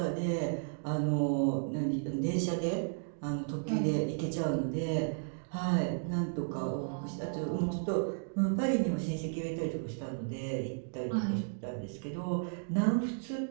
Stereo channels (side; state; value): left; silent; digital silence